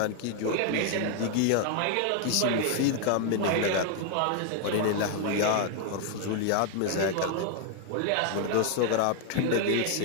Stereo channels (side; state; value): both; different; correlation 0.00